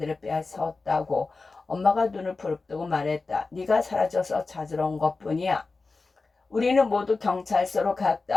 빼앗았다고. 엄마가 눈을 부릅뜨고 말했다. 네가 사라져서 찾으러 온 것뿐이야. 우리는 모두 경찰서로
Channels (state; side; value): quieter; right; 3.9 dB